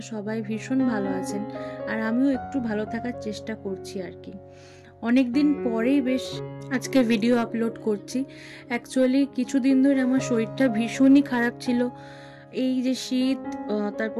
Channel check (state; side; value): identical; both; correlation 1.00